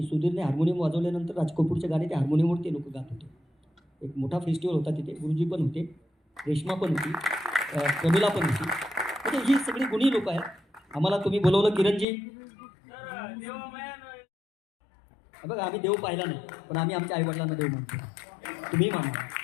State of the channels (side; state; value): right; drops out; at 12.1 s